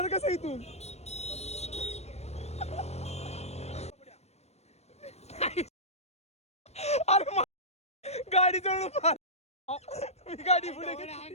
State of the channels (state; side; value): late; right; 0.31 ms